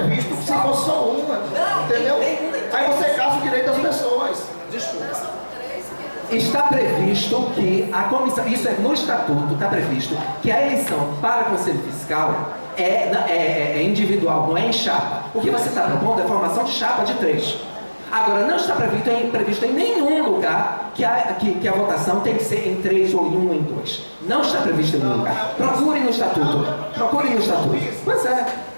que se fosse só uma. Entendeu? Aí você caça o direito das pessoas. Desculpa. está previsto que a comissão, isso é no estatuto, está previsto que a eleição para Conselho Fiscal é individual, não é em chapa. O que você está propondo é a formação de chapa de 3. Agora, não está previsto em nenhum lugar que a votação tem que ser em 3 ou em 1 ou em 2. Não está previsto em nenhum lugar. Procure no estatuto. Procure no estatuto. Pois é.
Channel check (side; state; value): both; inverted; correlation -1.00